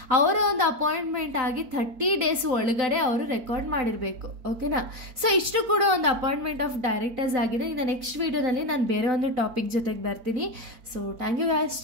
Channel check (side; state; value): left; late; 4.4 ms